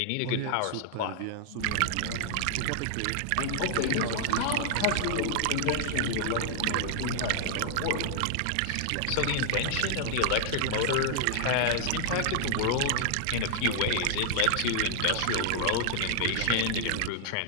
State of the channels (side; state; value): both; different; correlation -0.01